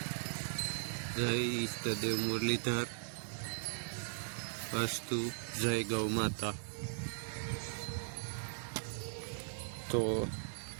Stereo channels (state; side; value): silent; left; digital silence